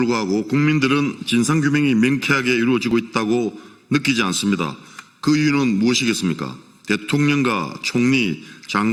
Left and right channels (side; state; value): both; identical; correlation 1.00